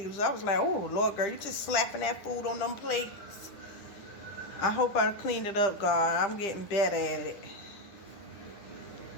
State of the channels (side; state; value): right; late; 9.8 ms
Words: I was like, oh, Lord, girl, you just slapping that food on them plates. I hope I cleaned it up, God. I'm getting better at it.